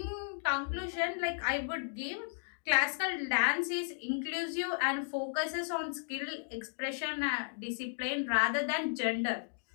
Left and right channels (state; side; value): silent; right; digital silence